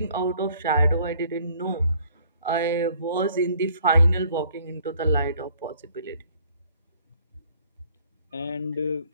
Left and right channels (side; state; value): both; inverted; correlation -0.59